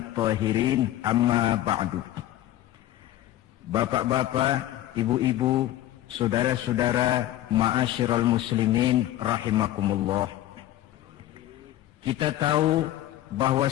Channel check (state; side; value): quieter; right; 13.8 dB